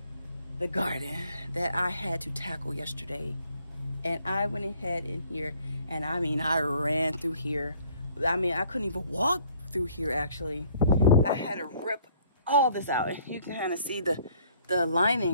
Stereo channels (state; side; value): inverted; both; correlation -0.60